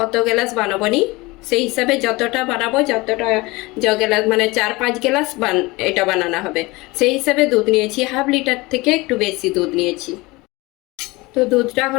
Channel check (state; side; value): quieter; right; 22.7 dB